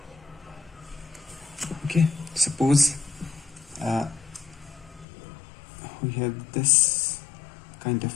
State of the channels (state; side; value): drops out; right; at 5.1 s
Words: Okay, suppose we have this kind of